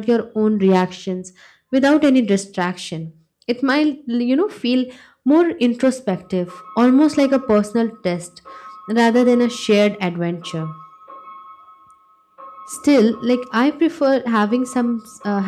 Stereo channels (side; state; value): both; identical; correlation 1.00